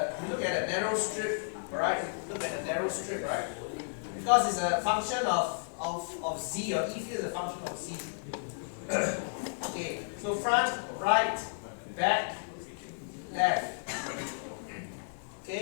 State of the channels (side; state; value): right; silent; digital silence